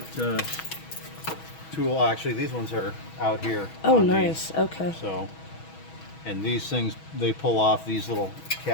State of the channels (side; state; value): right; late; 6.2 ms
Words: tool. Actually, these ones are out here. Oh, nice. Okay. So, and these things, they pull off, these little